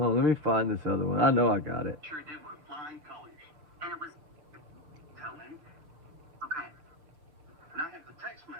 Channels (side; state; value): left; late; 6.7 ms